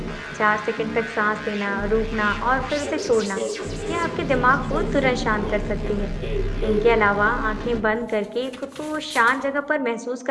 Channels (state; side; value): identical; both; correlation 1.00